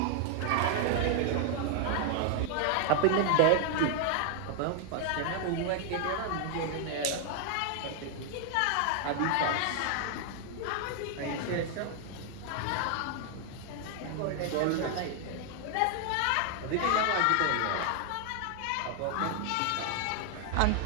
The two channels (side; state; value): both; different; correlation 0.00